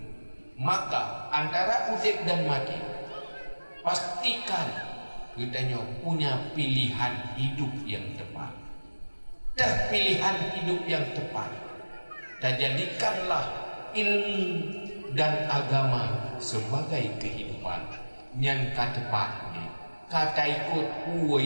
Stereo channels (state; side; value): inverted; both; correlation -1.00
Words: Maka antara udip dan mati pastikan kita punya pilihan hidup yang tepat. Dah pilihan hidup yang tepat dan jadikanlah ilmu dan agama sebagai kehidupan yang tepat ni kata ikut